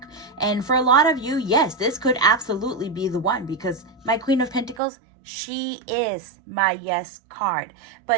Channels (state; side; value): drops out; left; at 4.8 s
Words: And for a lot of you, yes, this could absolutely be the one, because my Queen of Pentacles, she is my yes card,